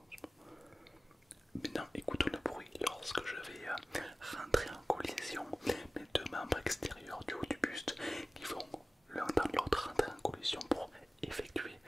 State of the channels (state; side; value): normal; both; correlation 0.97